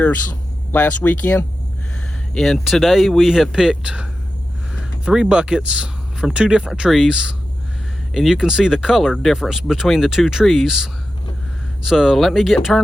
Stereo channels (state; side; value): normal; both; correlation 0.92